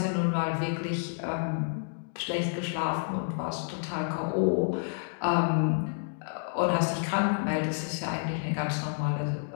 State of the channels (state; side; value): silent; right; digital silence